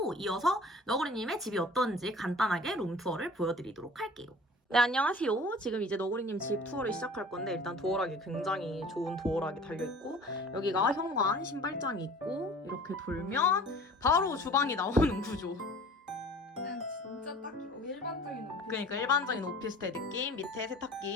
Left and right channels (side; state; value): both; normal; correlation 0.45